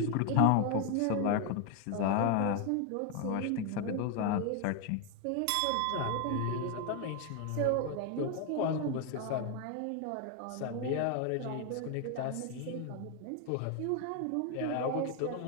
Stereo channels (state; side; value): different; both; correlation 0.01